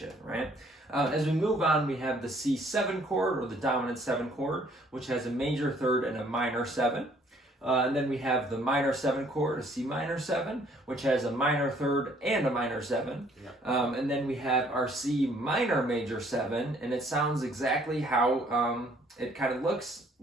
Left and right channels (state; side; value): normal; both; correlation 0.62